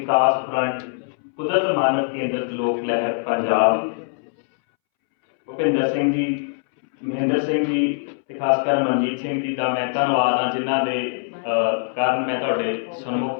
फ्रंट कुदरत मानव केंद्रित लोक लहर पंजाब भुपिंदर सिंह जी, महेंद्र सिंह जी ते खासकर मनजीत सिंह जी का मैं धन्यवाद हाँ जिन्हों के कारण मैं तुहाडे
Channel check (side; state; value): right; silent; 64 dB below the other